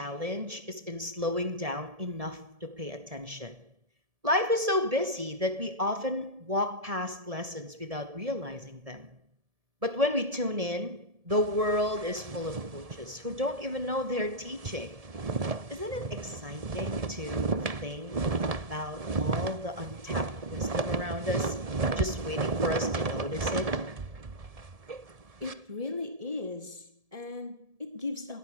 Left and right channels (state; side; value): late; left; 1.7 ms